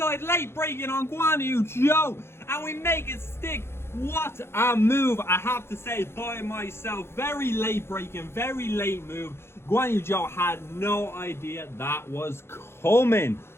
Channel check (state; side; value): late; right; 0.12 ms